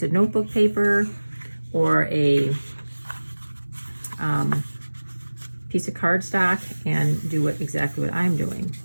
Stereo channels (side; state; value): both; inverted; correlation -1.00